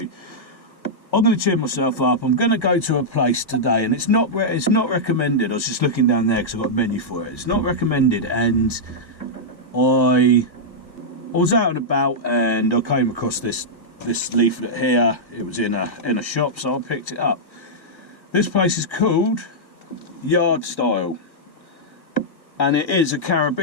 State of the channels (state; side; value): late; right; 1.5 ms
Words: I'm going to cheer myself up. I'm going to go to a place today, and it's not recommended. I was just looking down there because I've got a menu for it. It's not recommended, and I was out and about, and I came across this leaflet here. It was in a shop, so I picked it up. This place is called Yard Style, and it is a